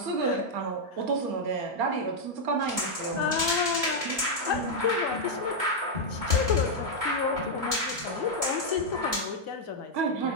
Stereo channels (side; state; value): left; late; 2.2 ms